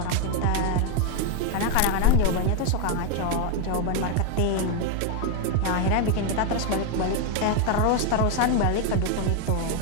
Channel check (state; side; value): different; both; correlation 0.01